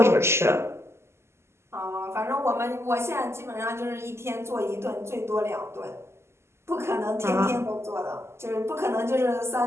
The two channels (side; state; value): left; late; 0.13 ms